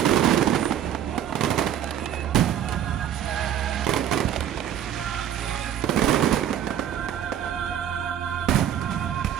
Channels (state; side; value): quieter; left; 10.2 dB